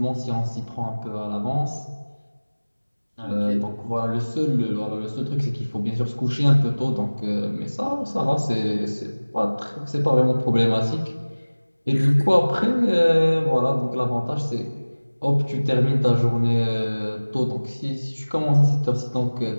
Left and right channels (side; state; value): both; inverted; correlation -1.00